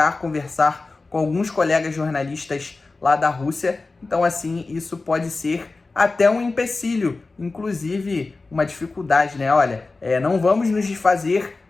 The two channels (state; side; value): quieter; right; 3.6 dB